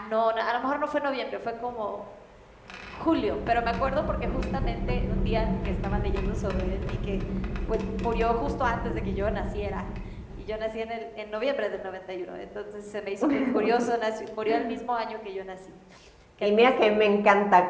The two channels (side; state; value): both; identical; correlation 1.00